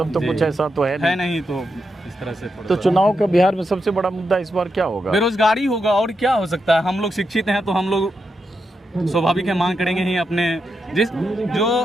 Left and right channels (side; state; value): both; normal; correlation 0.85